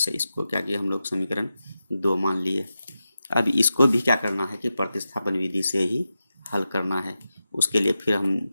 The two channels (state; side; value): inverted; both; correlation -0.91